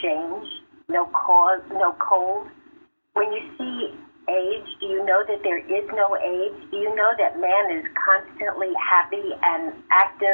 change, no cause, no cold? When you see age, do you know that there is no age? Do you know that man is constantly happy and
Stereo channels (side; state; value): both; inverted; correlation -1.00